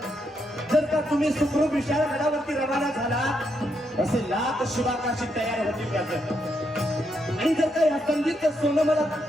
जर का तुम्ही सुखरूप विशाळगडावरती रवाना झाला, असे लाख शिवाकाशी तयार होतील त्याचं. आणि जर का या संधीचं सोनं मला,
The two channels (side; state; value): both; normal; correlation 0.79